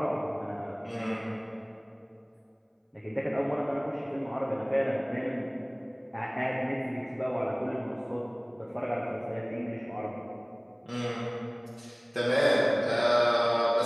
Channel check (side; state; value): both; identical; correlation 1.00